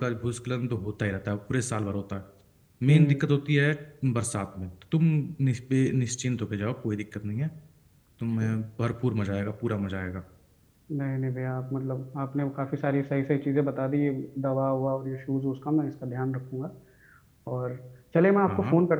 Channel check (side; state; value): both; identical; correlation 1.00